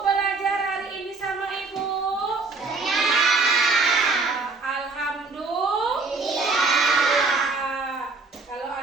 hari ini sama ibu? Senang. Alhamdulillah. Kalau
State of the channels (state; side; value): quieter; left; 3.9 dB